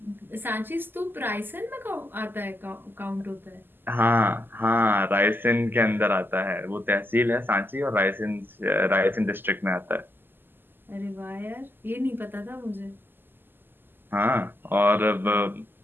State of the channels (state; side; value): late; left; 0.095 ms